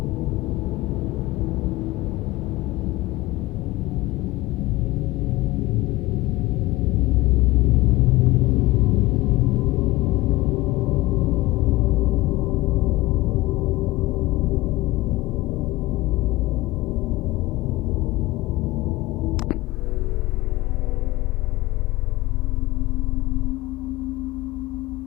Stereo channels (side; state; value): right; quieter; 19.2 dB